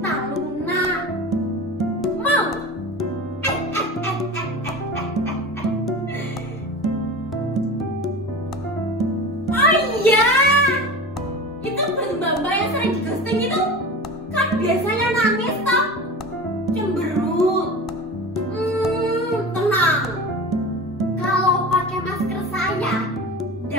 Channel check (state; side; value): normal; both; correlation 0.32